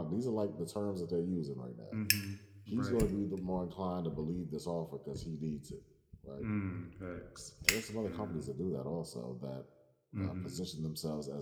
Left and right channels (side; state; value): both; identical; correlation 1.00